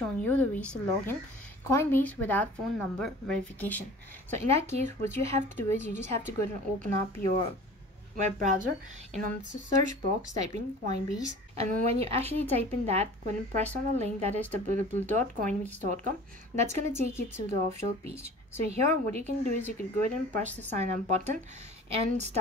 you the ways to log in Coinbase without phone number verification. So in that case, what you have to do is you just have to go and open up your web browser, and on the search box type in Coinbase, and when you actually type in that, go ahead and press on the link that is www.coinbase.com. That's going to take you to the official page. So here what you can do is you can go ahead and press the sign up button and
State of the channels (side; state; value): both; normal; correlation 0.43